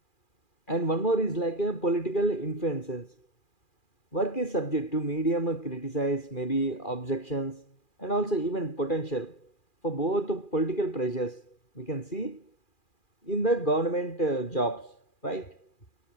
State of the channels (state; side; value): late; right; 2.4 ms